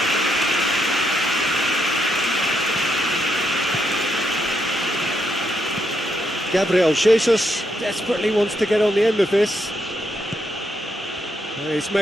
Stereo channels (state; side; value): normal; both; correlation 0.79